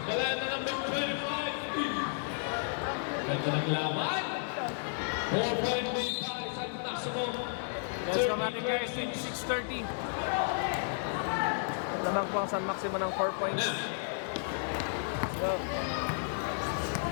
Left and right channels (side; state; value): right; silent; digital silence